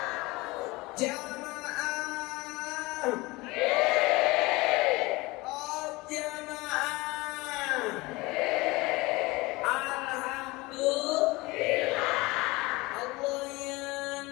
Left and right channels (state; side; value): quieter; right; 22.6 dB